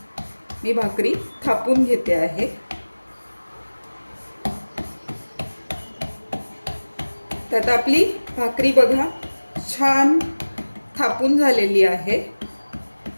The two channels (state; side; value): inverted; both; correlation -1.00